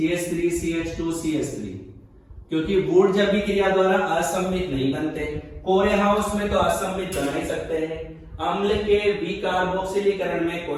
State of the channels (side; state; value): both; identical; correlation 1.00